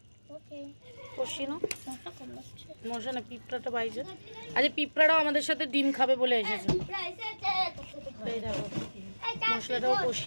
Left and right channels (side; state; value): both; inverted; correlation -1.00